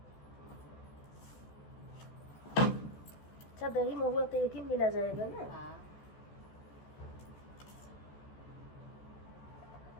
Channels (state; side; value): late; right; 14 ms